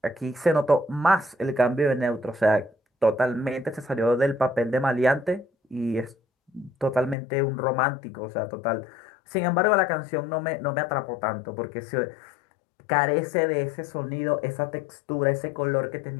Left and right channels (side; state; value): right; drops out; at 7.2 s